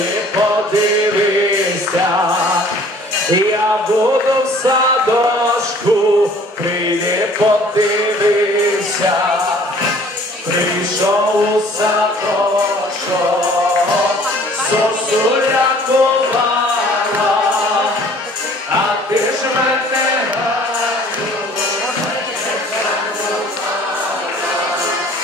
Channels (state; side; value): normal; both; correlation 0.53